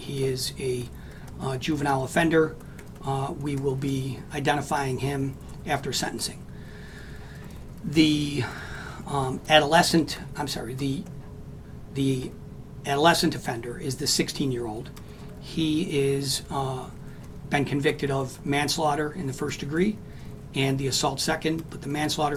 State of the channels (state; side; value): identical; both; correlation 1.00